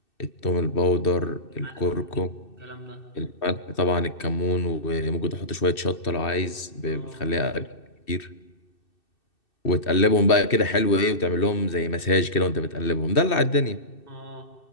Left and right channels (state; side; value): late; right; 2.6 ms